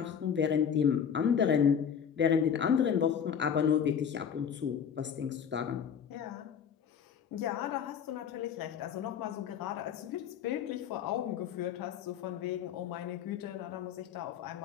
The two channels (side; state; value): right; quieter; 7.8 dB